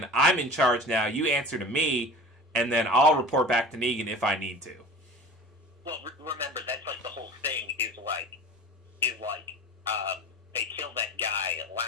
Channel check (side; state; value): both; normal; correlation 0.38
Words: I'm in charge now, you answer to me, and then I'll report back to Negan if I need to. Well, remember, that's like the whole thing is they killed that guy